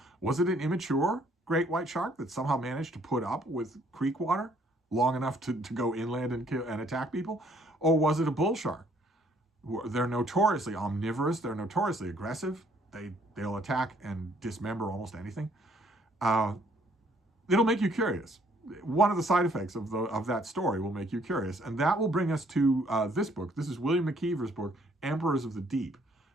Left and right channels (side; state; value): both; normal; correlation 0.64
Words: Was it an immature great white shark that somehow managed to put up with creek water long enough to go inland and attack people? Or was it a bull shark? They're notoriously omnivorous. They're notoriously aggressive. They'll attack and dismember almost anything. It'll make you curious. One of the side effects of that story will make you curious. And that will bring us to this book. This is William McKeever's book, Emperors of the Deep,